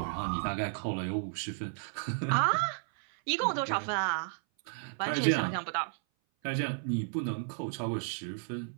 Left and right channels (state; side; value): silent; left; 56 dB below the other